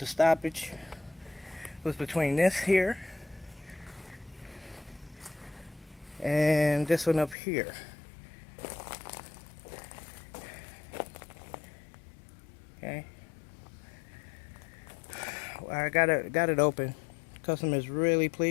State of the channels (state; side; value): drops out; right; at 7.4 s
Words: stoppage was between this here and this one up here. Okay. I got it open. Customer's really